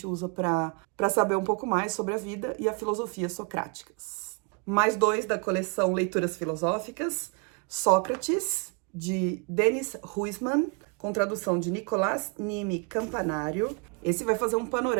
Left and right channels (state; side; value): quieter; left; 35.5 dB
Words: usa para saber um pouco mais sobre a vida e a filosofia socráticas. Mais dois da coleção Leituras Filosóficas, Sócrates, de Denis Huysman, com tradução de Nicolás Nime Campanário. Esse vai fazer um